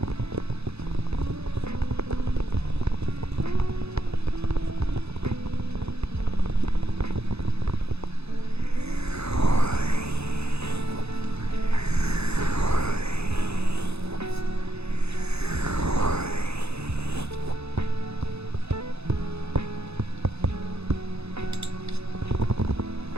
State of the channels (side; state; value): left; late; 0.79 ms